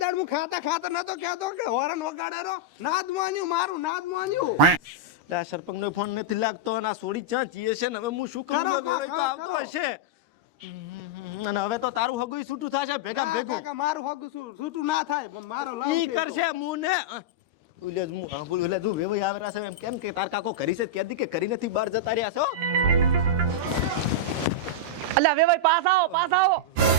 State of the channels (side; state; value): left; late; 13 ms